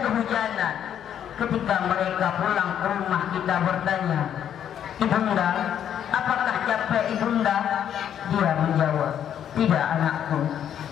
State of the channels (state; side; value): quieter; right; 9.6 dB